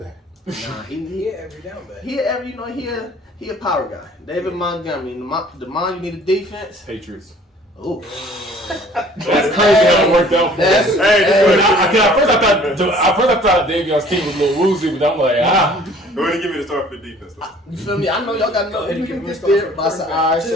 Nah, He he every down back. he a power guy. David Montgomery. Demond, you need a defense. Patriots. Ooh. That's crazy how it worked out for That's- us. Hey, At first I thought Davion's team was a little woozy, but I'm like, Go ahead and give me the start for the defense. You feel me? I know y'all got no. Go ahead and You give can him get a there. start But I said, for all right.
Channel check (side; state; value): both; normal; correlation 0.53